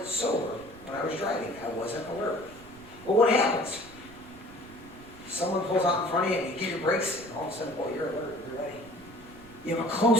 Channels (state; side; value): noise; right; rumble, 21 dB below the sound